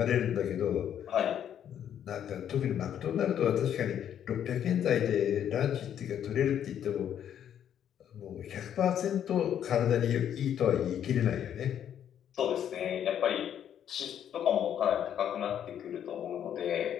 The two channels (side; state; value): right; quieter; 9.7 dB